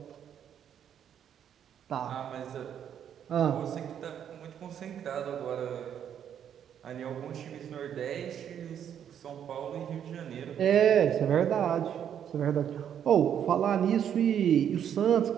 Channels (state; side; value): quieter; left; 9.1 dB